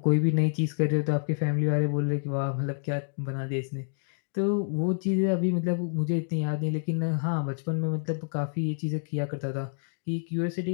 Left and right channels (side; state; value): right; silent; digital silence